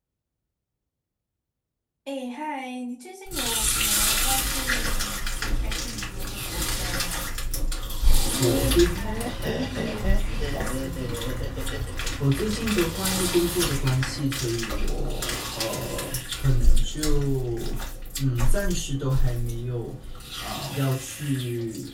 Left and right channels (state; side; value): identical; both; correlation 1.00